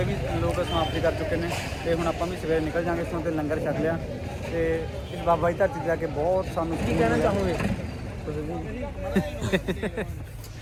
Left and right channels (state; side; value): identical; both; correlation 1.00